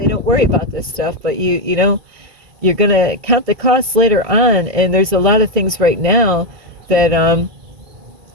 don't worry about this stuff, but you're going to count the costs later on. And there's a lot of things right now that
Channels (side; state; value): left; late; 1.9 ms